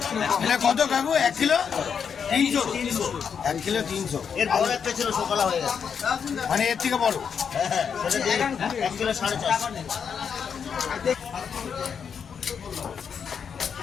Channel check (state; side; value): quieter; right; 6.9 dB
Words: এটা কত কাকু? 1 কিলো 300? 1 কিলো 300। এর বড় একটা ছিল সকালে হয়ে গেছে, মানে এর থেকে বড়। হ্যাঁ সেটা দিয়ে 1 কিলো 450।